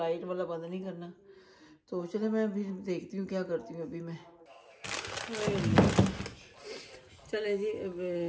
वाला बंद नहीं करना। तो चलो मैं अभी देखती हूँ क्या करती हूँ अभी मैं। चले जी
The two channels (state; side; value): identical; both; correlation 1.00